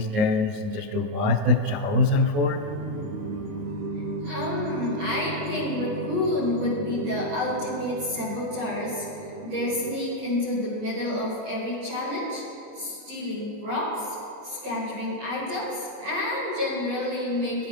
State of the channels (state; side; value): late; left; 28 ms